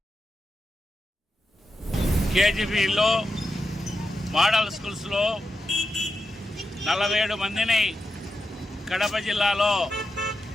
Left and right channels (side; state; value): both; normal; correlation 0.89